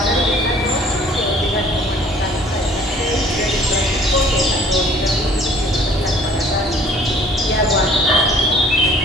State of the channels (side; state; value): both; normal; correlation 0.54